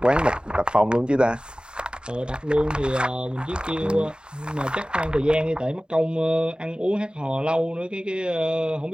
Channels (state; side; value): late; left; 0.050 ms